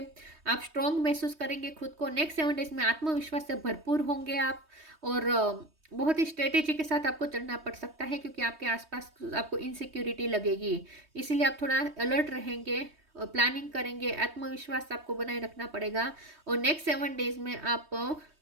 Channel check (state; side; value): late; left; 3.2 ms